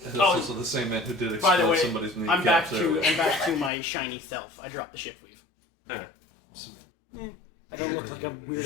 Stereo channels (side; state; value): right; drops out; at 3.7 s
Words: That's also the same man who did By the explode way, somebody's kneecap. I'm back to my shiny self. I dropped the shift weave. Eh. I don't look like a